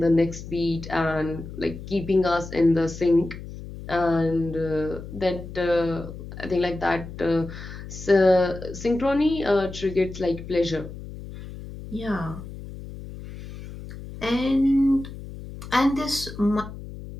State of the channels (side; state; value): left; noise; hum, 12 dB below the sound